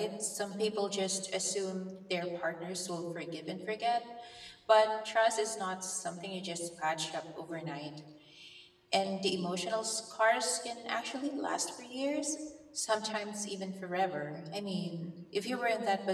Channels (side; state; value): both; identical; correlation 1.00